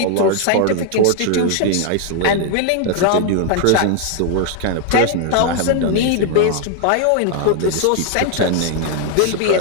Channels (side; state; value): both; different; correlation 0.00